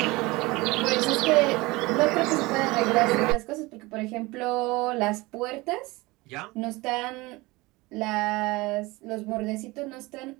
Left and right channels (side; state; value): left; quieter; 22.2 dB